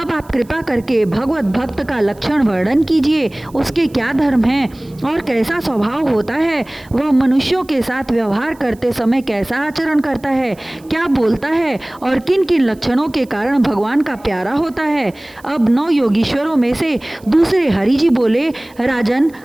आप कृपा करके भगवत भक्त का लक्षण वर्णन कीजिए। उसके क्या धर्म हैं और कैसा स्वभाव होता है? वह मनुष्यों के साथ व्यवहार करते समय कैसा आचरण करता है, क्या बोलता है और किन किन लक्षणों के कारण भगवान का प्यारा होता है? अब 9 योगीश्वरों में से दूसरे हरि जी बोले, राजन,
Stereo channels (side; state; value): right; noise; hiss, 28 dB below the sound